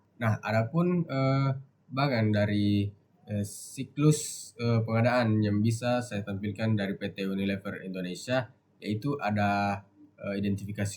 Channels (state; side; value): identical; both; correlation 1.00